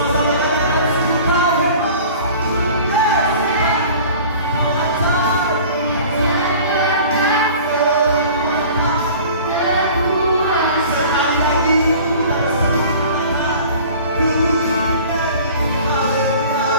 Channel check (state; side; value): inverted; both; correlation -0.44